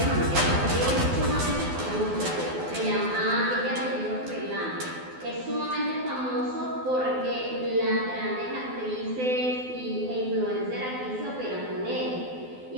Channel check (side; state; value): left; late; 12 ms